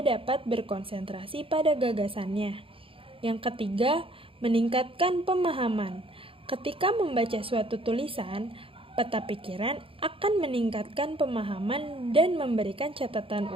dapat berkonsentrasi pada gagasannya. Yang ketiga, meningkatkan pemahaman. Ketika membaca suatu tulisan, peta pikiran akan meningkatkan pemahaman dan memberikan catatan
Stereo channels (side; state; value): left; late; 0.26 ms